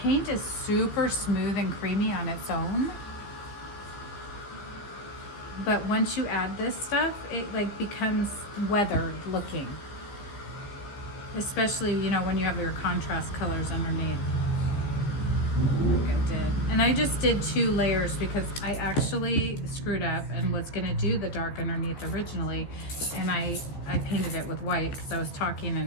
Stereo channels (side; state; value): right; late; 14 ms